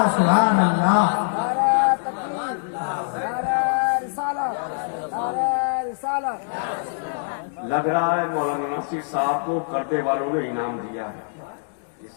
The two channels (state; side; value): silent; right; digital silence